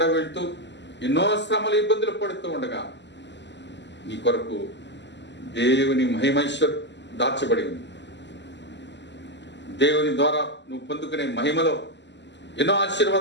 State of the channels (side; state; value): right; late; 0.51 ms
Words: వెళ్తూ ఎన్నో శ్రమలు ఇబ్బందులు పడుతూ ఉండగా నీ కొరకు దేవుని మహిమైశ్వర్ దాచబడి ఉంది. దేవుని ద్వారా నువ్వు పొందుకునే మహిమలో ఎన్నో